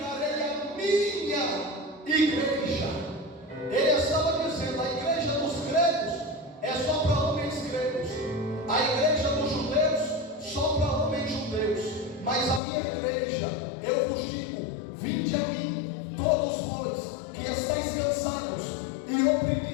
a minha igreja. Ele estava dizendo: a igreja dos gregos é só para homens gregos, a igreja dos judeus só para homens judeus. Mas a minha igreja, eu vos digo: vinde a mim, todos vós que estáis cansados e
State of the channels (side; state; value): right; drops out; at 12.6 s